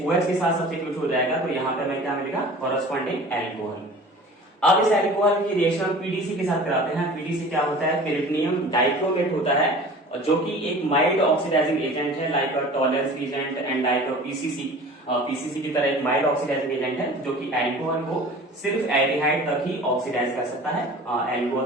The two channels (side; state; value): both; normal; correlation 0.42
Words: के साथ सब्स्टिट्यूट हो जाएगा, तो यहाँ पे हमें क्या मिलेगा, कॉरेस्पॉन्डिंग एल्कोहल। अब इस एल्कोहल की रिएक्शन PDC के साथ कराते हैं। PDC क्या होता है, पेरिटोनियम डाइक्रोमेट होता है, जो कि एक माइल्ड ऑक्सीडाइजिंग एजेंट है, like tolerance agent and like PCC की तरह एक माइल्ड ऑक्सीडाइजिंग एजेंट है, जो कि एल्कोहल को सिर्फ एल्डिहाइड तक ही ऑक्सीडाइज कर सकता है,